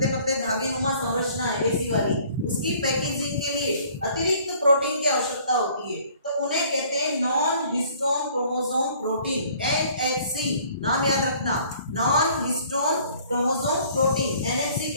पतले धागे नुमा संरचना है ऐसी वाली, उसकी पैकेजिंग के लिए अतिरिक्त प्रोटीन की आवश्यकता होती है, तो उन्हें कहते हैं non histone chromosome protein, NHC। नाम याद रखना, non histone chromosome protein, NHC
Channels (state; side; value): inverted; both; correlation -0.56